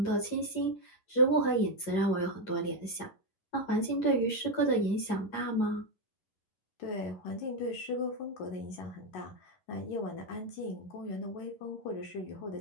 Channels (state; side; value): late; right; 11 ms